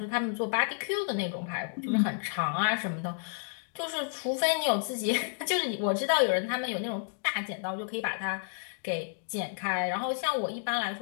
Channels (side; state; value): right; silent; digital silence